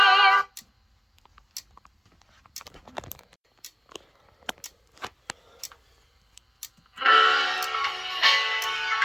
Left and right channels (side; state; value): both; identical; correlation 1.00